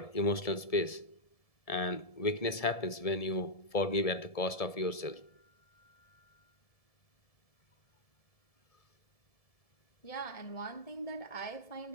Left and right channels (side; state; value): right; late; 1.7 ms